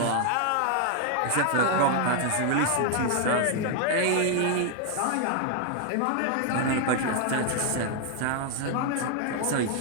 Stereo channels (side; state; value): both; different; correlation 0.00